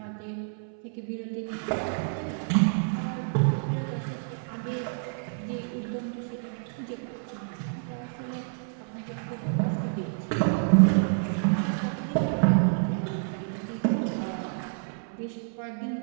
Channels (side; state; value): left; silent; 58 dB below the other